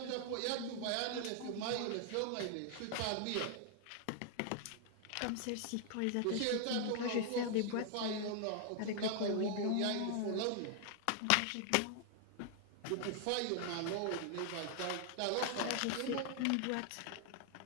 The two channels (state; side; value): different; both; correlation 0.00